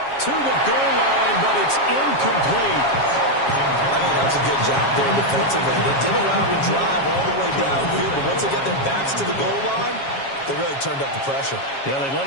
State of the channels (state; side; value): late; right; 7.3 ms